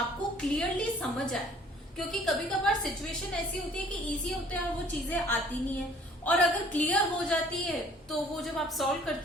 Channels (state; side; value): normal; both; correlation 0.55